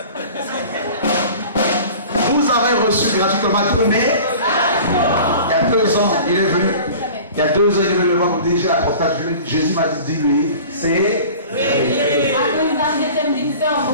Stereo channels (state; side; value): inverted; both; correlation -0.42